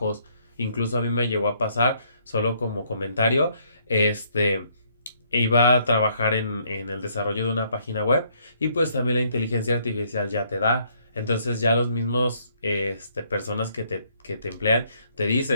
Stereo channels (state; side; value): inverted; both; correlation -0.68